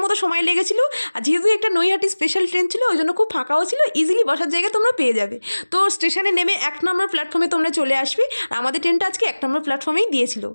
মতো সময় লেগেছিল। আর যেহেতু একটা নৈহাটি স্পেশাল ট্রেন ছিল, ওই জন্য খুব ফাঁকাও ছিল, ইজিলি বসার জায়গা তোমরা পেয়ে যাবে। তো স্টেশনে নেমে 1 নম্বর প্ল্যাটফর্মে তোমরা চলে আসবে। আর আমাদের ট্রেনটা আজকে 1 নম্বর প্ল্যাটফর্মেই দিয়েছিল।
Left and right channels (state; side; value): inverted; both; correlation -1.00